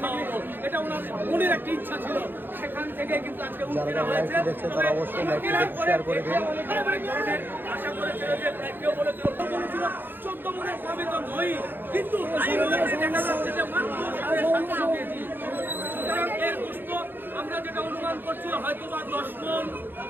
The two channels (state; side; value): late; left; 0.096 ms